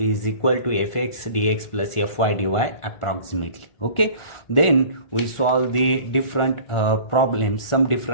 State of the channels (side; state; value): right; late; 1.4 ms